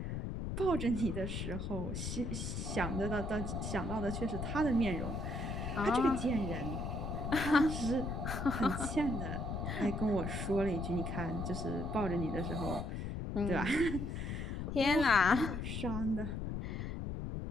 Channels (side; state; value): left; noise; rumble, 3 dB below the sound